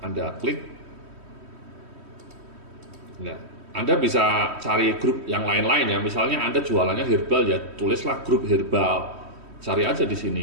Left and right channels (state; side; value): late; left; 3.1 ms